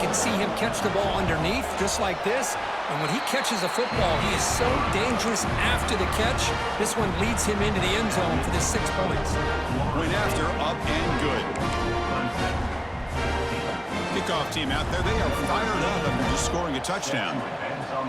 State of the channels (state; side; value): identical; both; correlation 1.00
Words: see him catch the ball underneath, just like this. And when he catches a football, he is so dangerous after the catch. This one leads him into the end zone for the 6 points. Point after, up and good. Kickoff team out there, they are fired up after just scoring a touchdown.